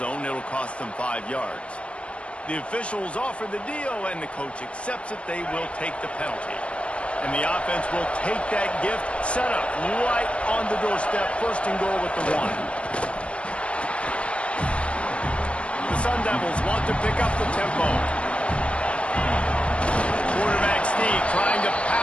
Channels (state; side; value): late; right; 0.060 ms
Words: It'll cost them 5 yards. The officials offer the deal, and the coach accepts it. They will take the penalty. And the offense will take that gift, set up right on the doorstep, first and goal with the 1. The Sun Devils want to pick up the tempo. Quarterback sneak trying to